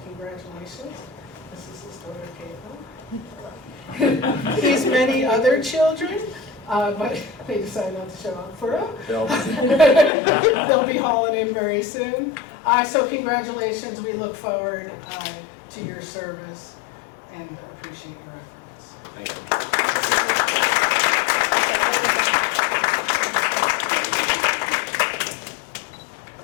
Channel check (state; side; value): drops out; right; at 10.1 s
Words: congratulations. This is his daughter, Caitlin. He's many other children, but they decided not to show up for him. They'll be hauling in very soon. So congratulations. We look forward to your service and appreciate your efforts. Thank you.